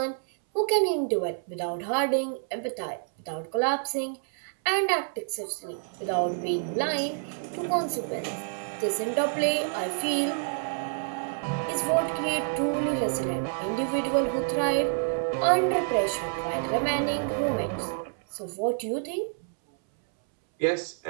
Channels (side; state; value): left; silent; 59 dB below the other